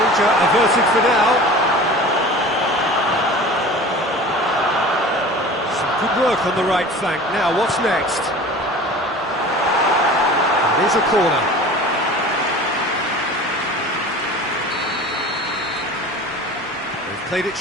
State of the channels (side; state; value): both; normal; correlation 0.39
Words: averted for now. Good work on the right flank. Now, what's next? It is a corner. They've played it